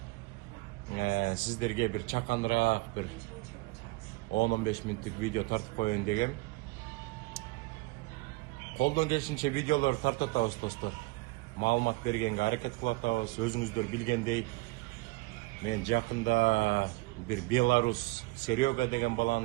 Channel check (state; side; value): quieter; left; 23.0 dB